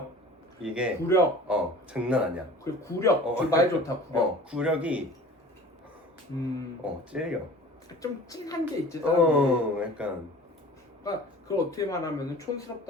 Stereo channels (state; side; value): normal; both; correlation 0.43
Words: 이게 구력. 장난 아니야. 그 구력. 말 좋다. 구력. 구력이 찔려. 좀 찡한 게 있지. 약간. 그러니까 그걸 어떻게 말하면